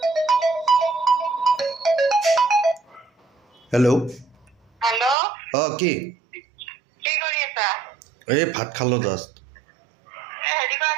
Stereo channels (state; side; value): drops out; left; at 5.2 s